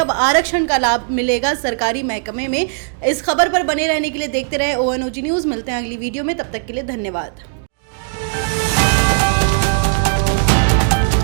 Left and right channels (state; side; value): silent; left; digital silence